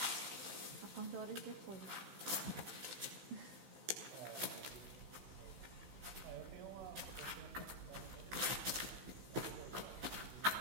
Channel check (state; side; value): late; left; 16 ms